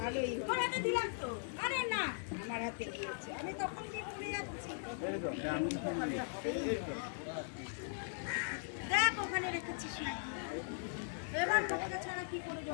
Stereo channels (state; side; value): silent; right; digital silence